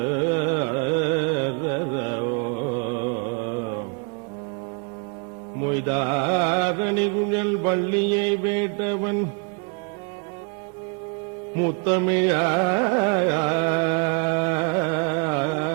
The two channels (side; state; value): left; quieter; 34.8 dB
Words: மொய்தாரணி குழல் வள்ளியை வேட்டவன்